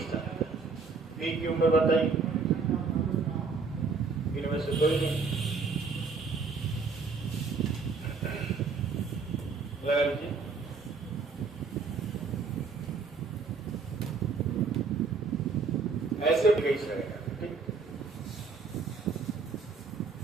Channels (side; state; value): left; quieter; 4.7 dB